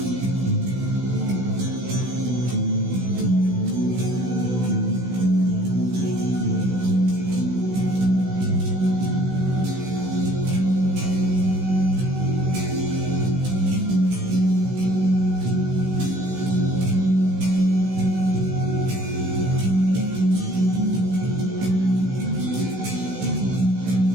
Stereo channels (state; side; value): late; left; 16 ms